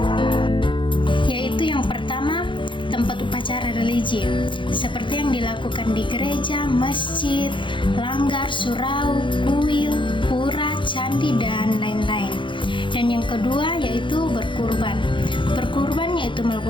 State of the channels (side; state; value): right; late; 0.24 ms